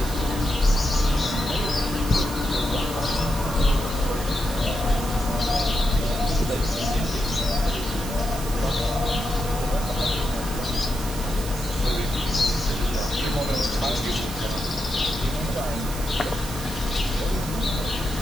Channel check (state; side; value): noise; right; hiss, 10 dB below the sound